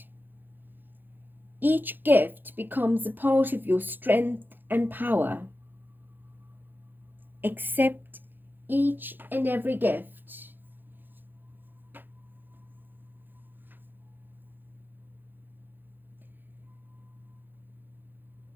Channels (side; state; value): left; late; 0.093 ms